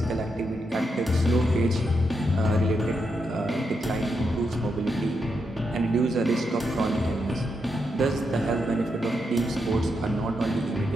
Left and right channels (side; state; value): both; normal; correlation 0.83